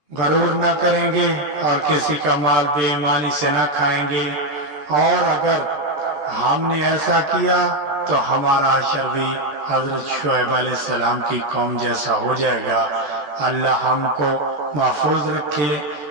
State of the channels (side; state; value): left; late; 14 ms